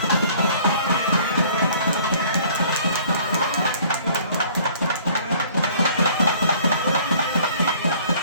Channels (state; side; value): inverted; both; correlation -0.54